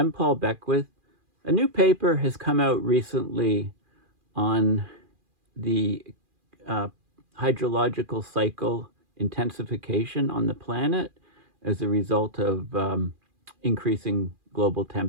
Paul Beckwith. A new paper has come out recently on the uh, hydrological cycle intensification on the planet as a result of increasing global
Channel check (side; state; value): left; late; 2.4 ms